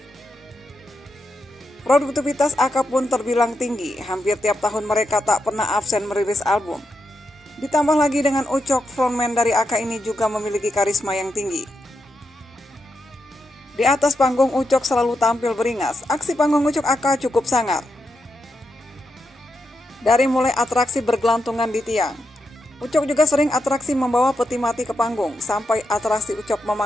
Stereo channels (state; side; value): normal; both; correlation 0.85